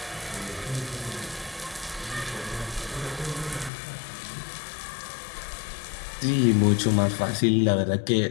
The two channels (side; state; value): right; drops out; at 3.7 s